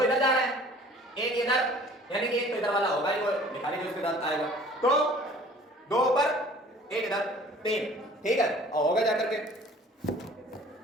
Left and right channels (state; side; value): normal; both; correlation 0.50